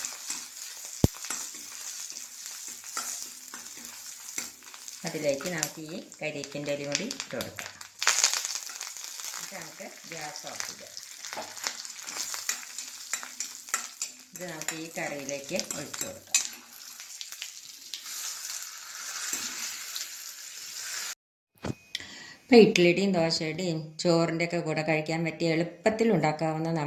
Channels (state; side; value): identical; both; correlation 1.00